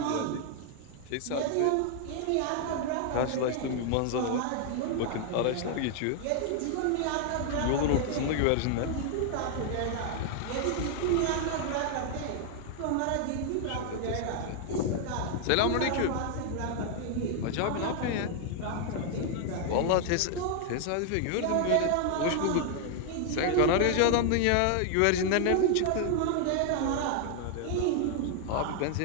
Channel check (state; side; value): different; both; correlation 0.00